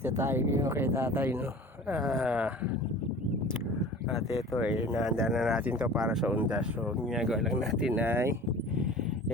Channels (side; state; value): both; normal; correlation 0.41